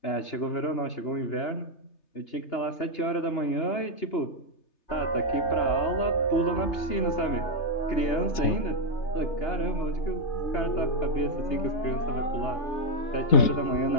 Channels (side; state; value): right; late; 3.3 ms